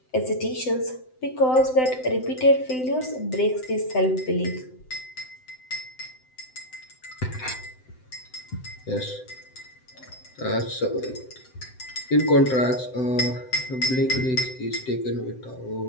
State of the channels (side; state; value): right; late; 7.8 ms